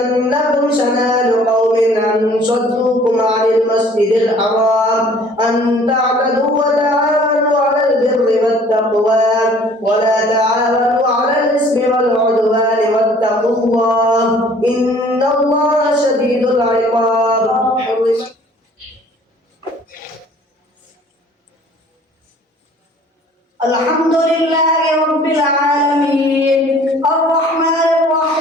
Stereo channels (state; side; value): normal; both; correlation 0.53